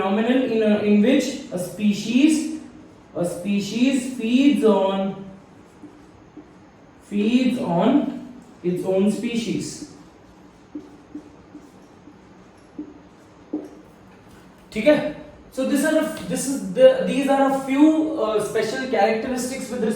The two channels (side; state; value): both; identical; correlation 1.00